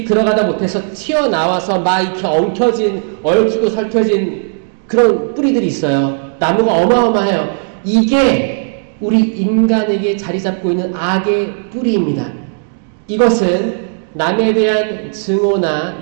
들어가다 못해서 튀어나와서 막 이렇게 엉켜진 얽히고 설켜진 그런 뿌리들이 있어요. 나무가 어마어마해요. 이게 우리 인간에게 자리 잡고 있는 악의 뿌리입니다. 이것은 남에 대한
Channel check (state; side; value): silent; left; digital silence